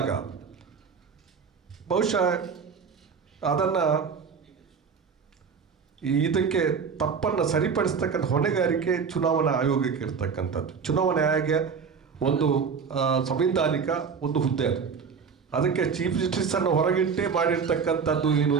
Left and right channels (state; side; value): quieter; left; 6.0 dB